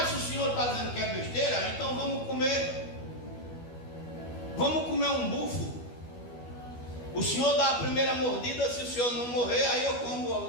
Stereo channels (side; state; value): right; late; 12 ms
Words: se o senhor está dizendo que é besteira, então vamos comer um bufo. O senhor dá a primeira mordida, se o senhor não morrer, aí eu como